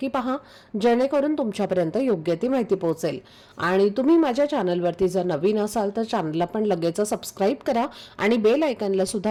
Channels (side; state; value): both; identical; correlation 1.00